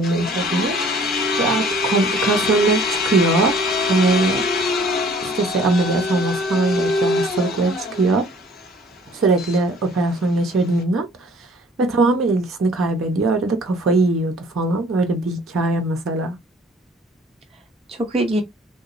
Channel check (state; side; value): normal; both; correlation 0.54